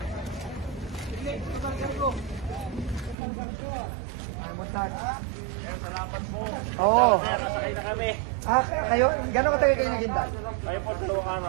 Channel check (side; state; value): left; drops out; at 3.2 s